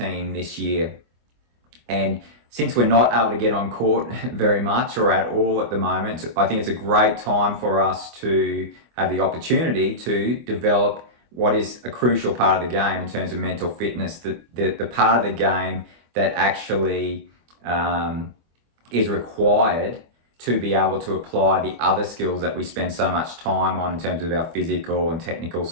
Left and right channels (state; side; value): late; left; 24 ms